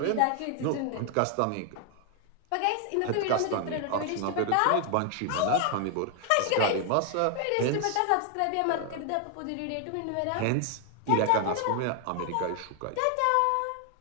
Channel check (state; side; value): different; both; correlation 0.00